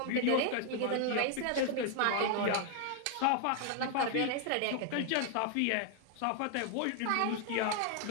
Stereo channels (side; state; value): both; different; correlation 0.00